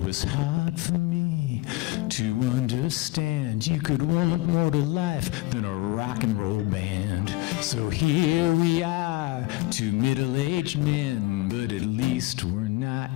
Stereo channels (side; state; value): right; quieter; 20.0 dB